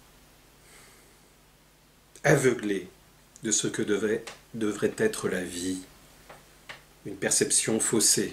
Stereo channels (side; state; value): both; identical; correlation 1.00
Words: aveuglée de ce que devrait être la vie, une perception